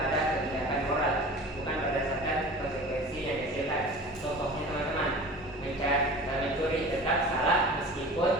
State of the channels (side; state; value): both; normal; correlation 0.38